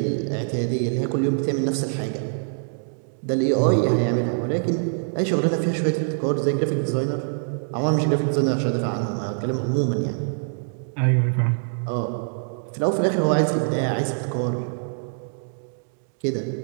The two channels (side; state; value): left; silent; digital silence